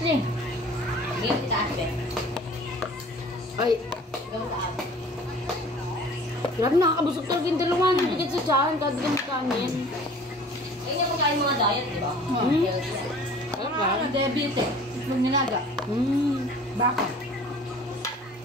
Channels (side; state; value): both; normal; correlation 0.47